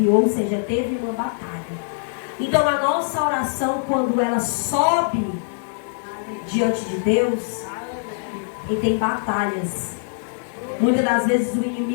ou seja, teve uma batalha. Então a nossa oração, quando ela sobe diante de Deus, e tem batalhas. Muitas das vezes o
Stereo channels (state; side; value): silent; right; 64 dB below the other